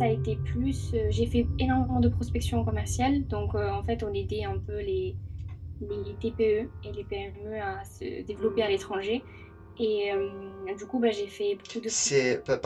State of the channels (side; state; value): both; identical; correlation 1.00